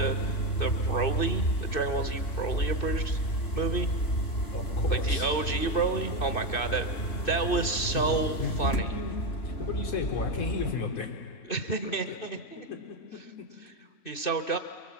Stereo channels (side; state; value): right; late; 2.6 ms